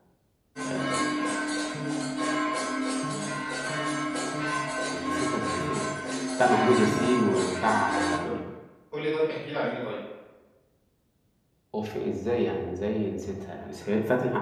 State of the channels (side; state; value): both; identical; correlation 1.00